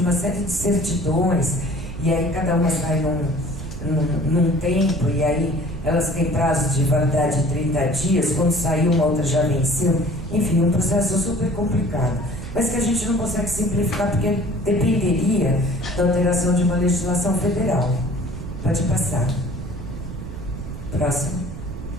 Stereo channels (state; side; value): noise; right; rumble, 10 dB below the sound